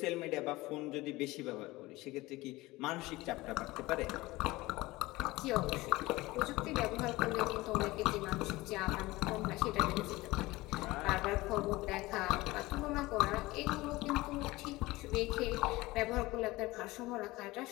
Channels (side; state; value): right; quieter; 20.0 dB